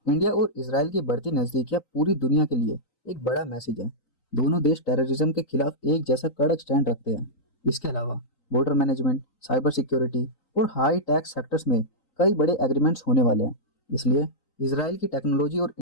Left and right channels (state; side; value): late; right; 3.9 ms